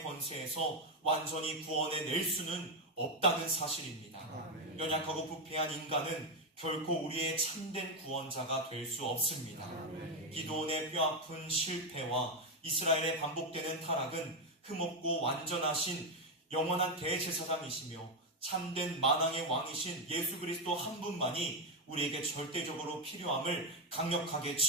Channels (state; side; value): normal; both; correlation 0.06